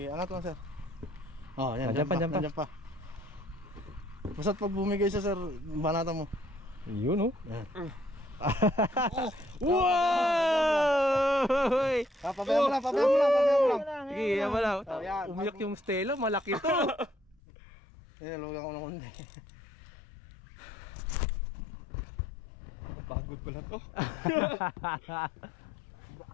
angat lang sir. Oh, yan. Diyan pa. Basta't pag bumigay siya sir, banatan mo. Yun oh. Yan. Wow! Pabayaan mo lang. Sige, yan mo lang. Umiyak yung Stella, malaki to. Lugan ko ng kundi. Pagod pala to.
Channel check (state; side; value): drops out; right; at 17.4 s